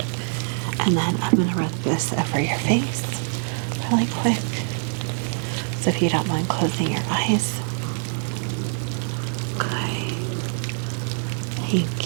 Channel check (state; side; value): silent; left; 59 dB below the other